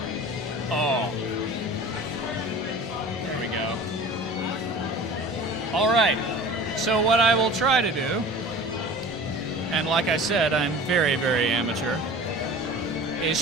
Oh. There we go. All right, so what I will try to do, and like I said, I'm very, very amateur, is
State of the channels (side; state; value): both; normal; correlation 0.40